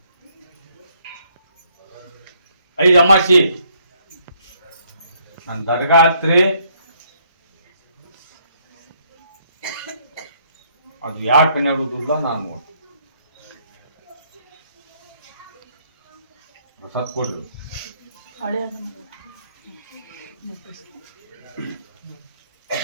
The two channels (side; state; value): both; inverted; correlation -0.69